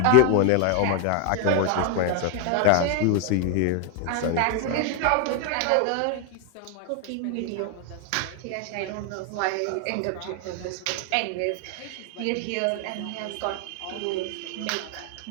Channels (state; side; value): different; both; correlation 0.01